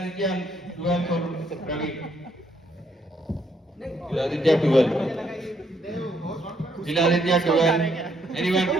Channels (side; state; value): both; normal; correlation 0.72